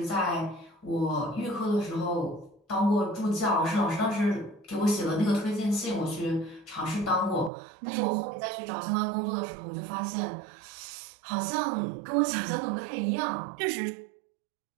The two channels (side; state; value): left; drops out; at 7.5 s